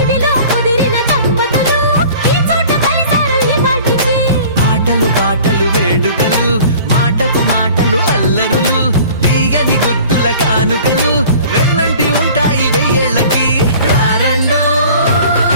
ఇవిలో కుదిరిన దంపతులు ఈ చోట కలిసారు ఈ వాటికి ఆటలు పాటలు వేడుకలు మాటకు మాటలు అల్లరులు తీయని గుర్తుల కానుకలు వెన్నంటి ఉంటాయి వెయ్యేళ్ళకి రారండో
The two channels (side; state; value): both; inverted; correlation -0.46